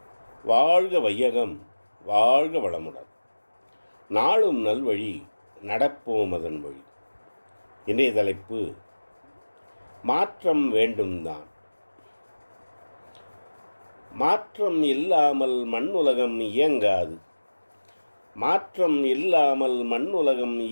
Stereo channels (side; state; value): both; inverted; correlation -1.00